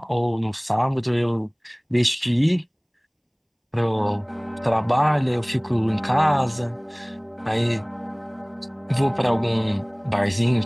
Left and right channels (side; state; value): both; identical; correlation 1.00